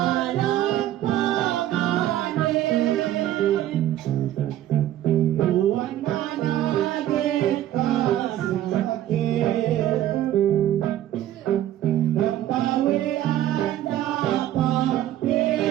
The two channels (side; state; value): left; quieter; 12.8 dB